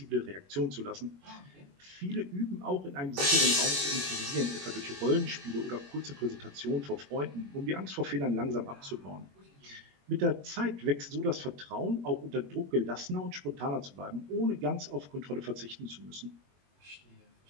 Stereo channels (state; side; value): late; left; 21 ms